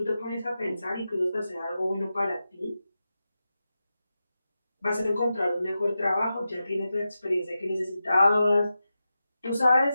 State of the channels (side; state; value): both; inverted; correlation -0.91